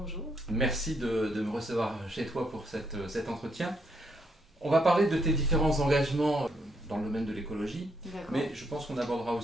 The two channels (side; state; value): both; normal; correlation 0.75